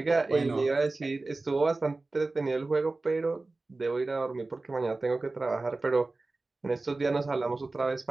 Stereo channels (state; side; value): quieter; left; 3.3 dB